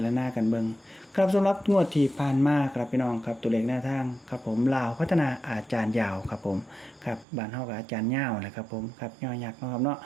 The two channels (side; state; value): left; drops out; at 7.2 s